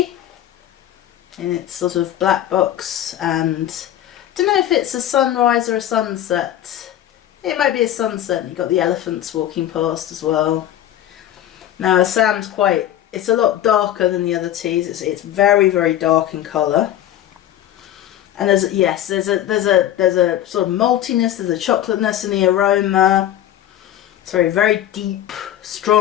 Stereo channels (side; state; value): right; quieter; 12.0 dB